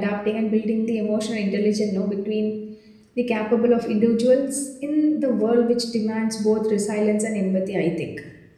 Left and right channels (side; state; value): both; identical; correlation 1.00